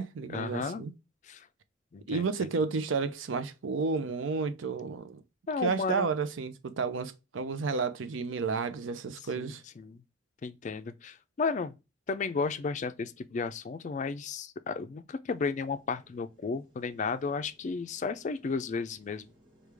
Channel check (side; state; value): both; normal; correlation 0.08